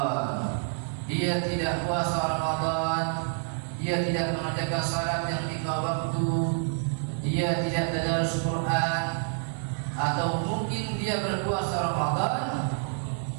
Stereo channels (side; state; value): left; silent; 59 dB below the other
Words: Dia tidak puasa Ramadan, dia tidak mengerjakan salat yang 5 waktu, dia tidak tadarus Quran, atau mungkin dia berpuasa Ramadan